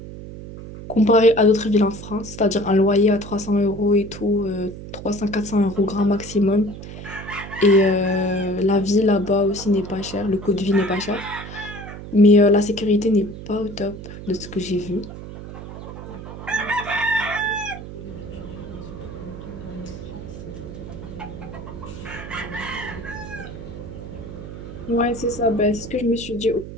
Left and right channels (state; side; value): noise; right; hum, 12 dB below the sound